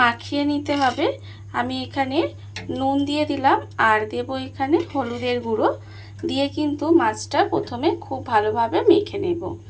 নিতে হবে। আমি এখানে নুন দিয়ে দিলাম আর দেব এখানে হলুদের গুঁড়ো দিয়ে কিন্তু মাছটা প্রথমে খুব ভালোভাবে মেখে নেব।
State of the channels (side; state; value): both; identical; correlation 1.00